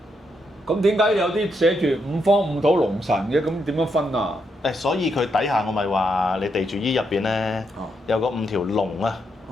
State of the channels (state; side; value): normal; both; correlation 0.80